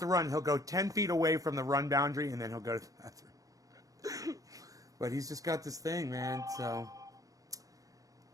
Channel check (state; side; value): late; left; 0.17 ms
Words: run, he'll go 10 feet away from the run boundary, and then he'll go to the bathroom. But he's just got this thing, man, so.